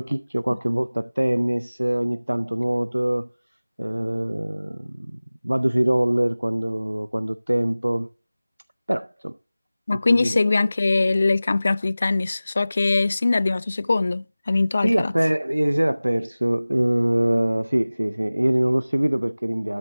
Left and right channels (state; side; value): inverted; both; correlation -0.98